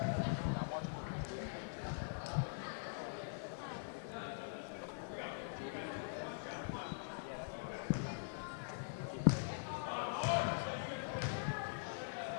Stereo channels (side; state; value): right; silent; digital silence